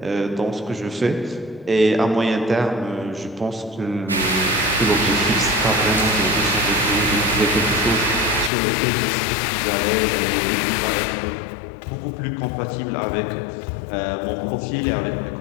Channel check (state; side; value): drops out; right; at 8.5 s